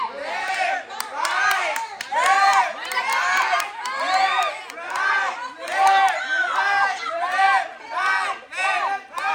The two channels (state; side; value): identical; both; correlation 1.00